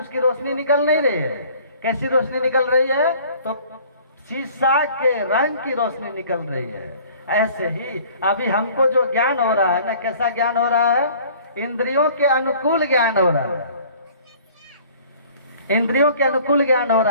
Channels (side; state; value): both; inverted; correlation -0.51